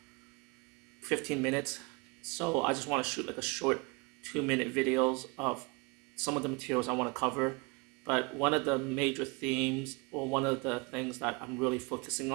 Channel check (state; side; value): quieter; left; 28.4 dB